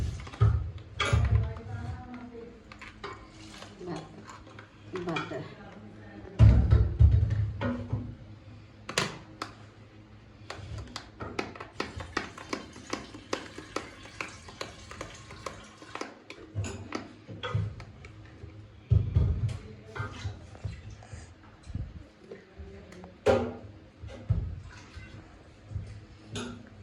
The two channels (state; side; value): identical; both; correlation 1.00